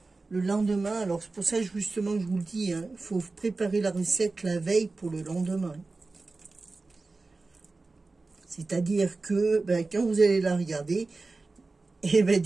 le lendemain. Alors c'est pour ça justement que je vous le dis, hein, il faut préparer la recette la veille pour le lendemain. C'est-à-dire que quand vous allez la regarder, et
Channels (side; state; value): left; quieter; 3.6 dB